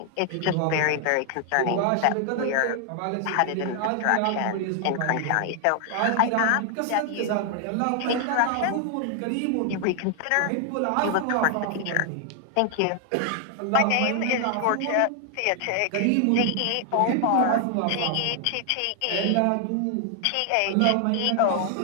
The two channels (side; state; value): both; different; correlation 0.00